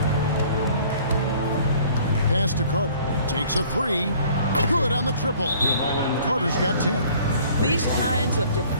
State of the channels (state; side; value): inverted; both; correlation -0.54